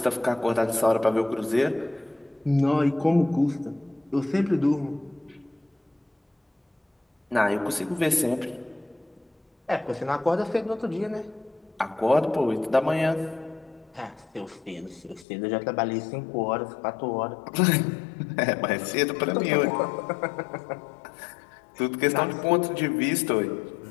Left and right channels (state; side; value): drops out; right; at 15.2 s